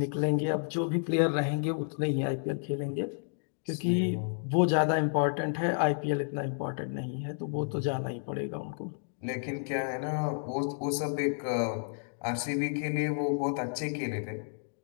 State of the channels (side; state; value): right; silent; digital silence